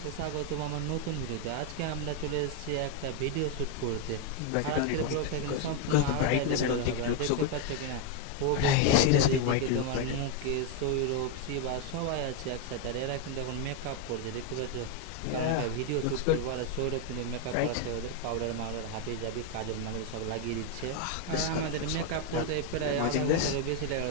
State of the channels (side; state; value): both; different; correlation 0.01